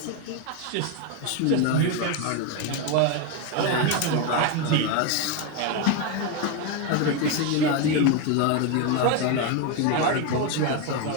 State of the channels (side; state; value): both; different; correlation 0.02